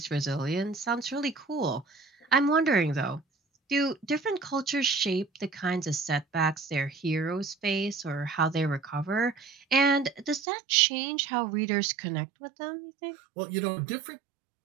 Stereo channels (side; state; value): left; drops out; at 10.5 s